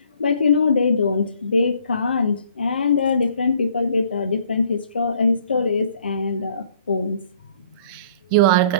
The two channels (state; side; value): inverted; both; correlation -0.58